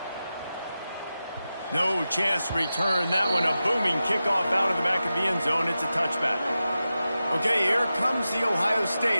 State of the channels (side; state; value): both; inverted; correlation -0.92